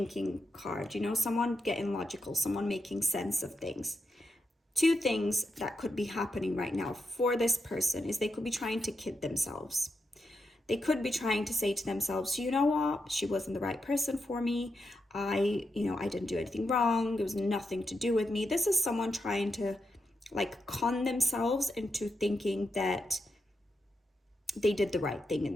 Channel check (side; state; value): both; normal; correlation 0.85